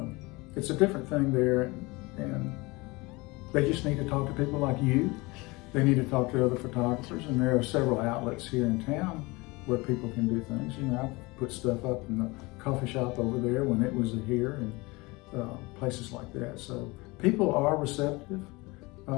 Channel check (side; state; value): right; quieter; 24.1 dB